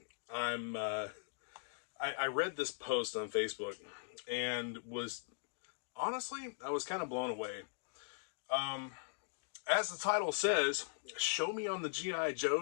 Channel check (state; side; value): silent; right; digital silence